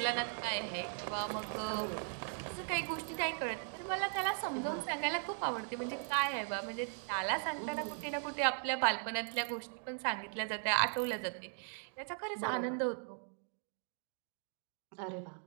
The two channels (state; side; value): silent; left; 52 dB below the other